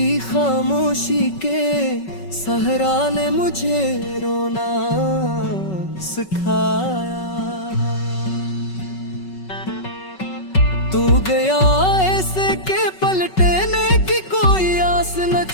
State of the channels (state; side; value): late; right; 5.3 ms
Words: खामोशी के सहरा ने मुझे रोना सिखाया। तू गया ऐसे के पलटने की कोई आस न